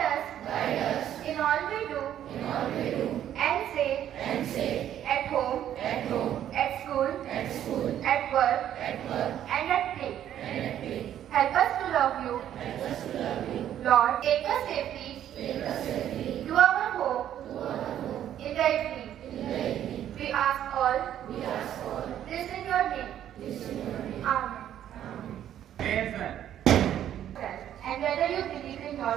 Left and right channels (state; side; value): quieter; left; 10.9 dB